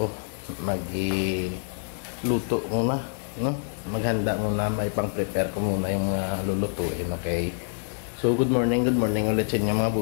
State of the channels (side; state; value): right; silent; digital silence